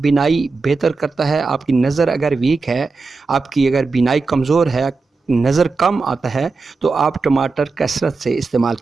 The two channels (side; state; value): left; quieter; 4.1 dB